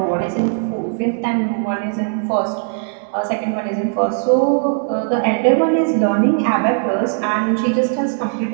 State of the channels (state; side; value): silent; left; digital silence